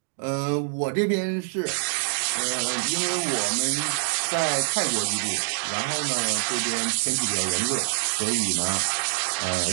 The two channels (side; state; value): left; silent; digital silence